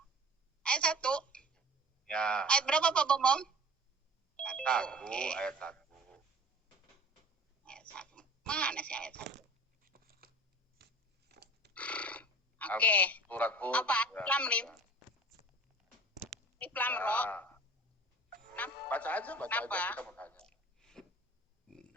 Ayat 1. Ya. Ayat berapa Pak Bom? 1, Oke. ayat 1. Ayat 1. Mana sih ayat 1? Oke. Surat Hud. Apa? Ya. Lam Lim. Lam Ro. Baca aja kita mau tanya.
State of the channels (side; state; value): both; normal; correlation 0.43